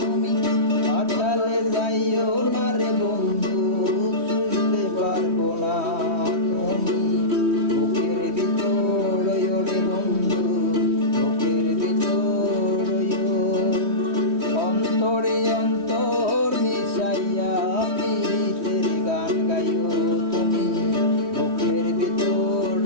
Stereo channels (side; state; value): left; late; 3.1 ms